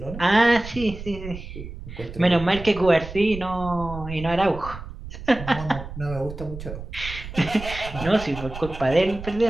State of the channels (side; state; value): right; noise; rumble, 11 dB below the sound